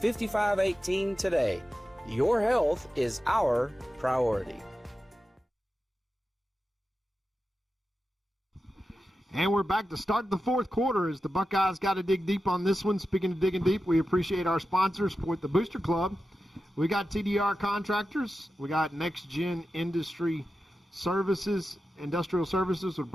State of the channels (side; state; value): both; normal; correlation 0.92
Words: today. Your health is our priority. And we're back to start the fourth quarter as the Buckeyes got to dig deep on this one. Speaking of digging deep, we appreciate our sponsors with the Booster Club. We got TDR Contractors. We got Next Gen Industrial Services with